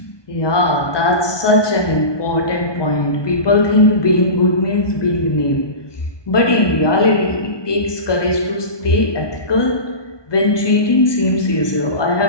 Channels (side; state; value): right; late; 1.2 ms